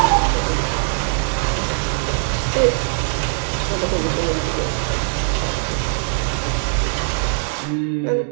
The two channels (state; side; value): silent; left; digital silence